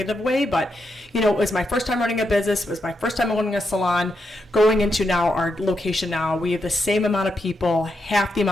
way, but it was my first time running a business. It was my first time owning a salon. Going into now our location now, we have the same amount of people, half the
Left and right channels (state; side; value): normal; both; correlation 0.83